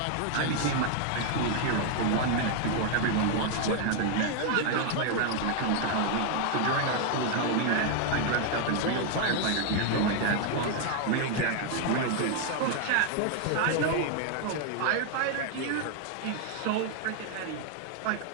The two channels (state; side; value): different; both; correlation 0.00